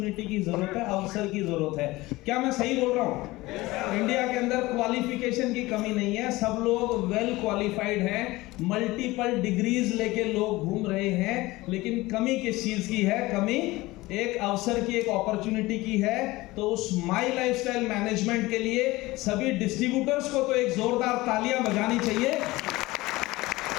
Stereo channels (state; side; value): quieter; right; 19.9 dB